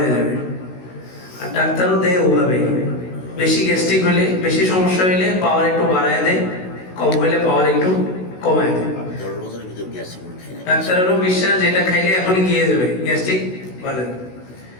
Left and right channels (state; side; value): late; right; 16 ms